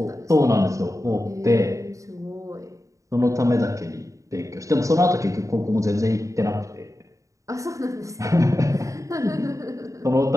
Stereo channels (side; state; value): left; late; 0.16 ms